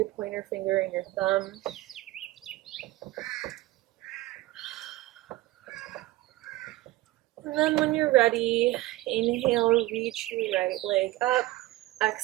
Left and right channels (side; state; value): left; quieter; 18.2 dB